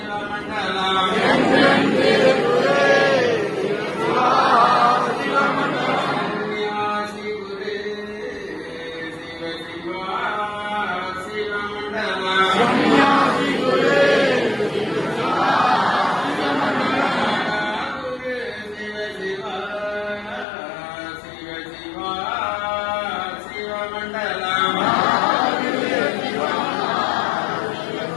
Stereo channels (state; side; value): drops out; right; at 20.5 s